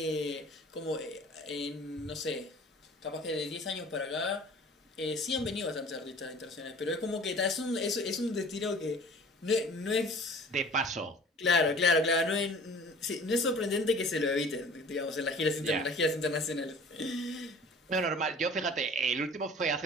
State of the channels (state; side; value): normal; both; correlation 0.47